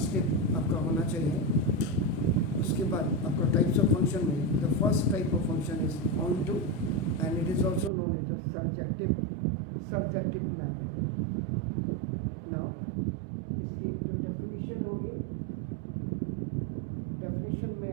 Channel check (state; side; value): drops out; left; at 7.9 s